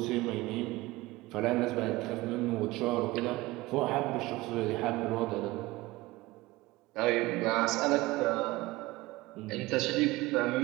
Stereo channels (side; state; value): left; quieter; 20.0 dB